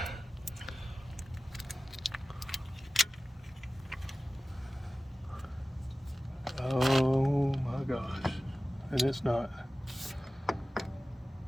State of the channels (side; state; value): both; normal; correlation 0.96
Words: Oh my gosh, and it's not.